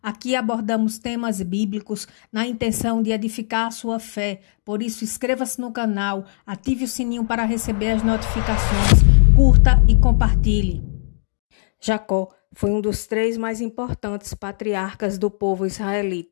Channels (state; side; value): silent; right; digital silence